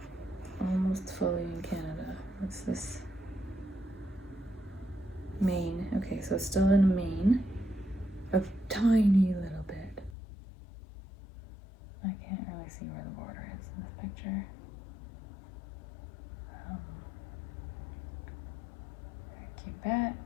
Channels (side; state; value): right; drops out; at 10.2 s